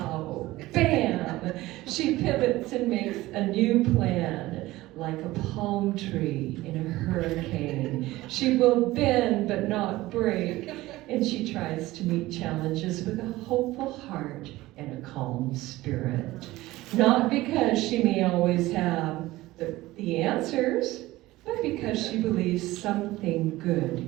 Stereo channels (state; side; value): quieter; left; 17.9 dB